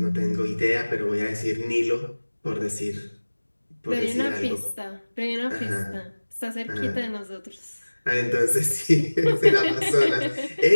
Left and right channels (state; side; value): inverted; both; correlation -1.00